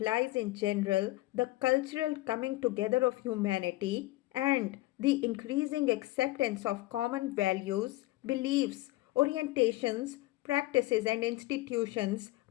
in general the cultural coming together of humanity and the increasing acceptance of common values, beliefs, orientations, practices, and institutions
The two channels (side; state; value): right; quieter; 18.7 dB